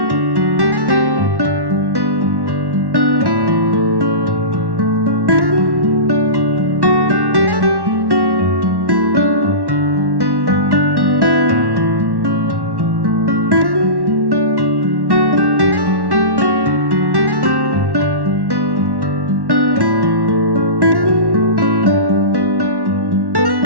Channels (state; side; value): late; left; 1.1 ms